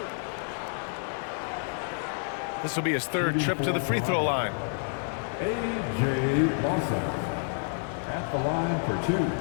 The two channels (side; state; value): right; silent; 59 dB below the other